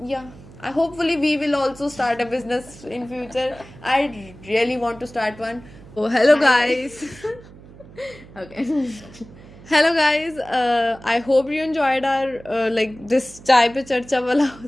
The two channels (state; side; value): noise; right; hum, 20 dB below the sound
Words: yeah, hopefully we will also start a business in future. I really want to start one. Oh, hello guys. Okay. Hello guys, I hope you enjoyed our like this chai pe charcha wala